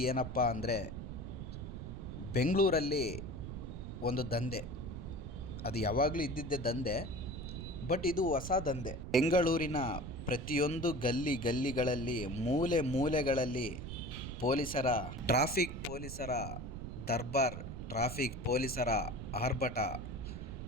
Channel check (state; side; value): noise; right; rumble, 7 dB below the sound